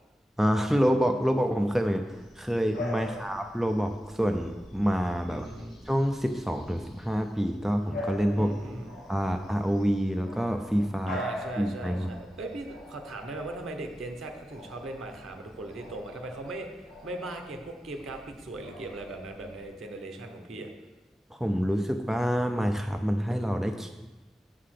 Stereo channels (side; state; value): both; normal; correlation 0.93